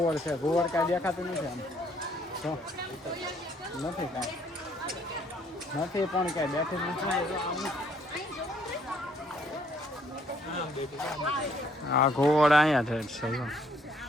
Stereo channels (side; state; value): both; normal; correlation 0.66